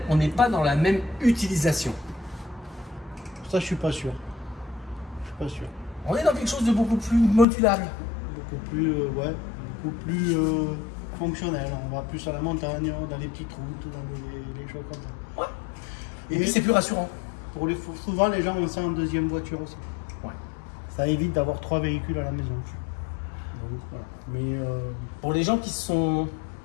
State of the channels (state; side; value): drops out; right; at 7.5 s